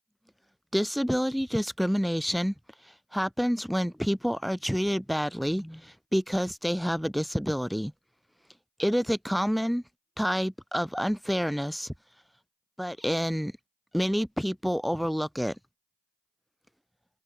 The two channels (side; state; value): both; identical; correlation 1.00